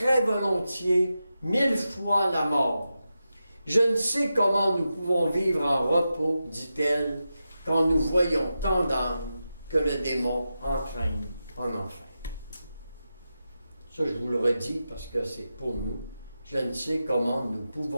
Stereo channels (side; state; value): both; inverted; correlation -0.90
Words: volontiers 1000 fois la mort. Je ne sais comment nous pouvons vivre en repos, dit-elle, quand nous voyons tant d'âmes que le démon entraîne en enfer. Ça, je vous le redis parce que c'est pour nous. Je ne sais comment nous